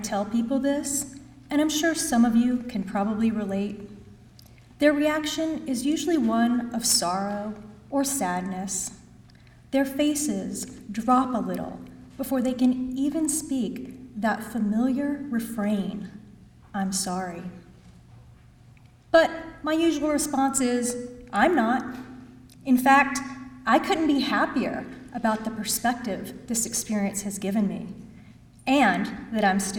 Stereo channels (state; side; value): identical; both; correlation 1.00